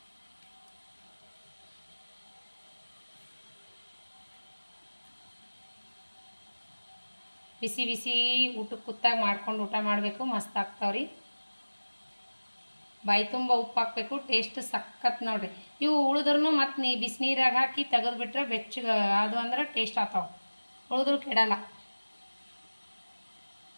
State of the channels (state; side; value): inverted; both; correlation -1.00